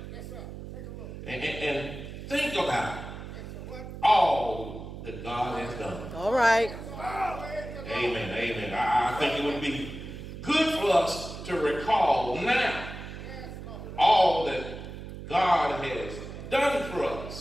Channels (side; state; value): right; noise; hum, 10 dB below the sound